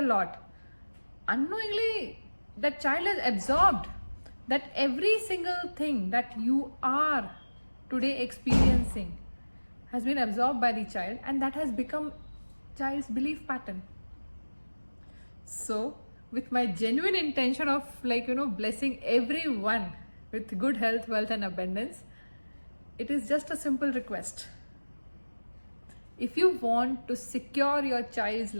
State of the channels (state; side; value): inverted; both; correlation -1.00